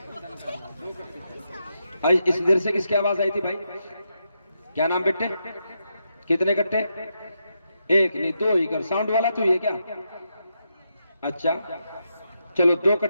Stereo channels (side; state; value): both; inverted; correlation -0.83